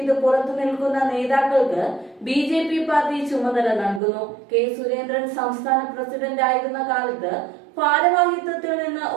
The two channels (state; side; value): drops out; left; at 4.0 s